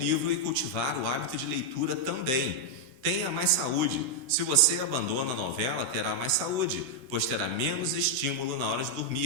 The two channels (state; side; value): late; left; 16 ms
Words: e cultivar o hábito de leitura também. Tenha mais saúde. Se você abandona a novela, terá mais saúde, pois terá menos estímulo na hora de